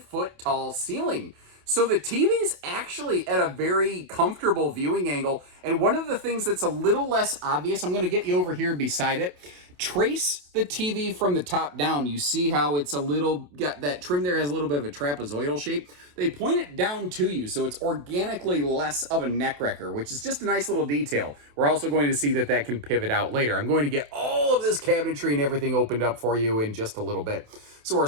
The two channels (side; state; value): left; late; 28 ms